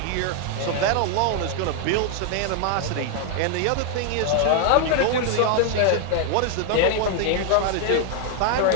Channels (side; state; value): both; different; correlation 0.00